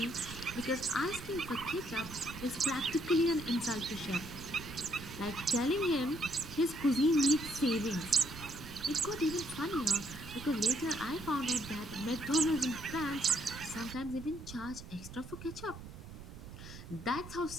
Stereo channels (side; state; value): right; noise; rumble, 13 dB below the sound